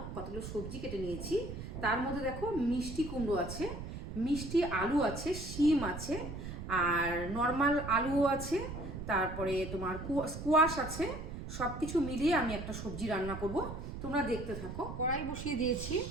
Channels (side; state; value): right; noise; rumble, 8 dB below the sound